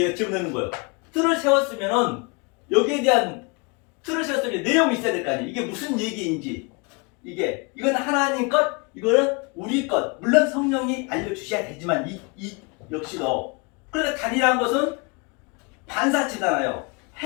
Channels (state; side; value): quieter; right; 30.5 dB